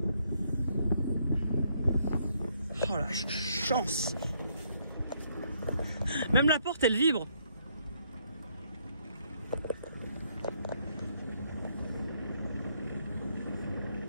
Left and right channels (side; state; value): both; inverted; correlation -0.71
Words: Oh la chance. Même la porte elle vibre.